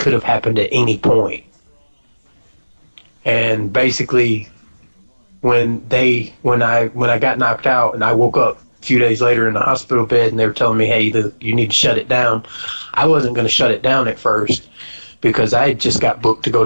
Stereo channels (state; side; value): inverted; both; correlation -1.00